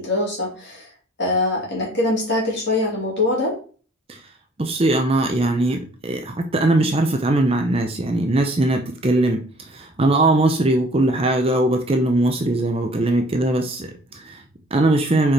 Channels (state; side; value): normal; both; correlation 0.55